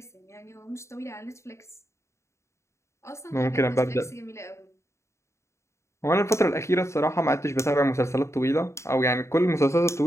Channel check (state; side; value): late; right; 0.14 ms